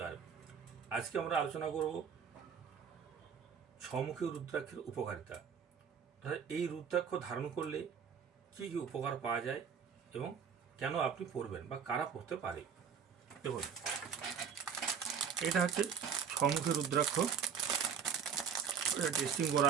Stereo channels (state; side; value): quieter; left; 7.1 dB